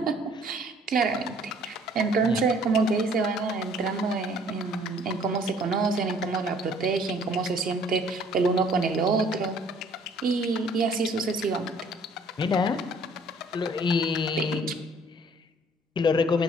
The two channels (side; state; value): both; normal; correlation 0.57